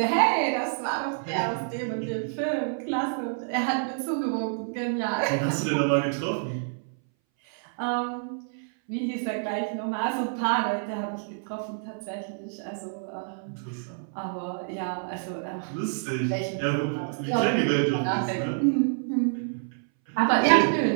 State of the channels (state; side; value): silent; left; 60 dB below the other